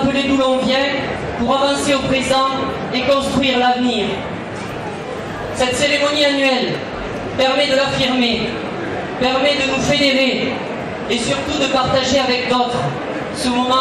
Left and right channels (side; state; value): both; identical; correlation 1.00